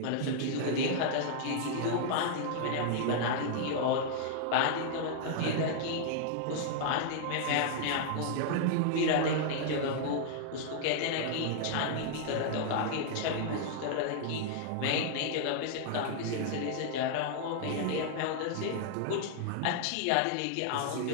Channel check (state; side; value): different; both; correlation -0.01